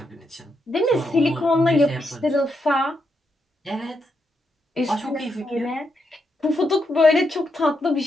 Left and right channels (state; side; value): normal; both; correlation 0.81